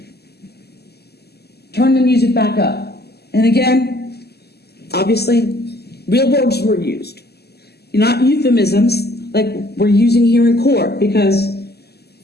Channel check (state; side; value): late; right; 0.47 ms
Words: turn the music back up. And again, obviously, real words were used. Not euphemisms like we're using here in court because